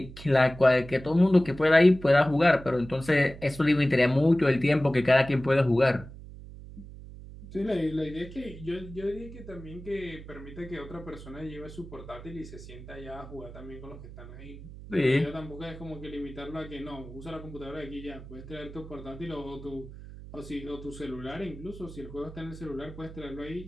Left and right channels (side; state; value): right; noise; hum, 15 dB below the sound